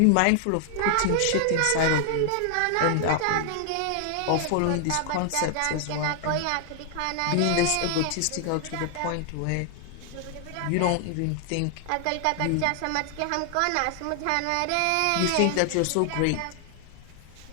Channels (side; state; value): both; different; correlation 0.00